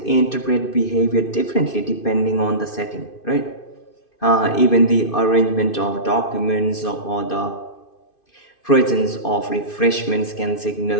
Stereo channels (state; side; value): late; right; 2.5 ms